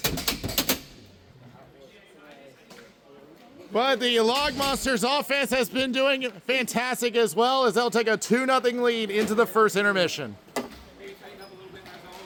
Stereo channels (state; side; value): identical; both; correlation 1.00